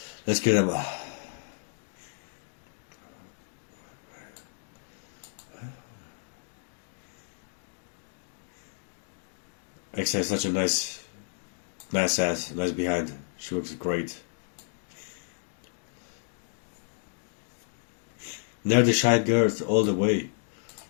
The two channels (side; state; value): right; silent; digital silence